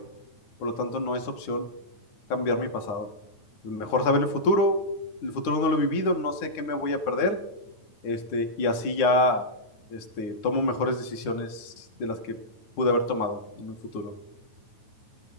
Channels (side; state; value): right; late; 9.1 ms